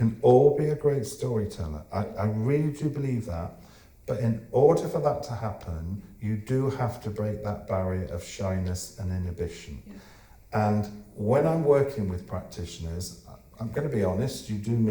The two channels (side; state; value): both; identical; correlation 1.00